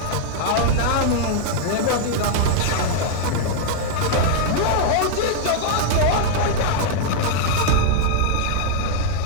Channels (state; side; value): different; both; correlation -0.01